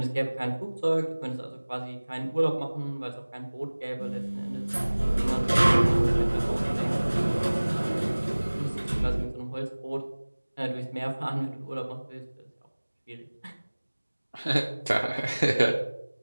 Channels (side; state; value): both; inverted; correlation -1.00